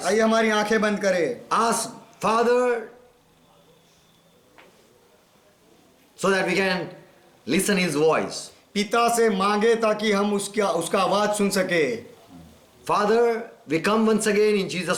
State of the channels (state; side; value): identical; both; correlation 1.00